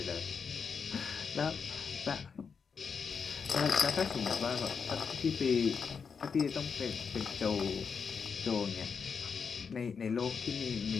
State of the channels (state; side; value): quieter; right; 6.0 dB